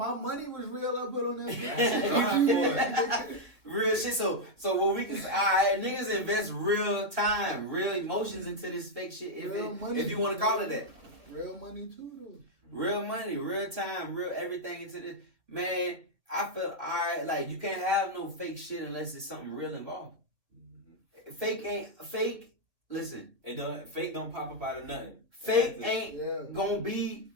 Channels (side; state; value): left; late; 2.1 ms